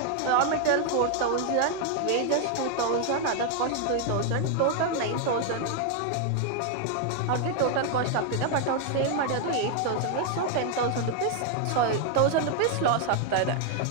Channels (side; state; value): both; different; correlation 0.00